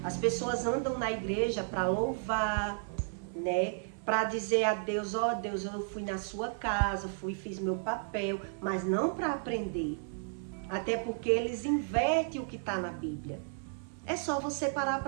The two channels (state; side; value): silent; left; 56 dB below the other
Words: As pessoas andam na igreja para louvar, né? Para dizer a Deus: ó Deus, eu fui na sua casa, fiz meu papel, mas não para aprender. Até porque eles invertem o que está na Bíblia. É só você parar